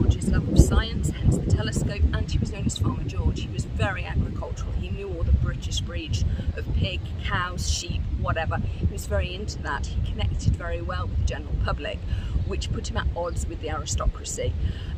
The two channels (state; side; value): identical; both; correlation 1.00